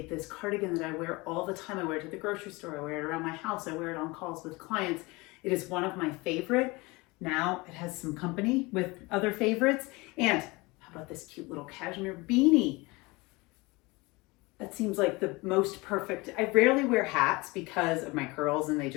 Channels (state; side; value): quieter; right; 24.1 dB